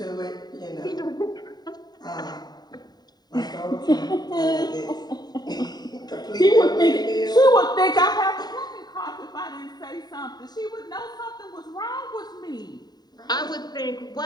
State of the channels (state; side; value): late; right; 0.20 ms